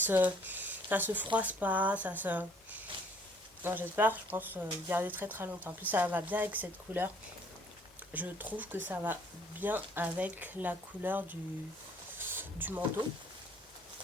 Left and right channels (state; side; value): normal; both; correlation 0.59